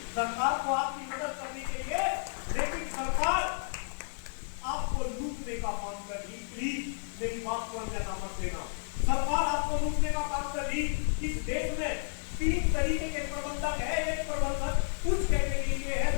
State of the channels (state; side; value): silent; right; 57 dB below the other